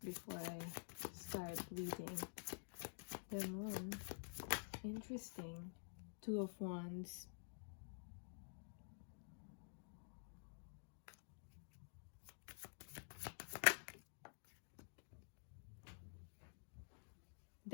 before I start reading. The moon. Interesting. Two of Wands.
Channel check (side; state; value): right; silent; digital silence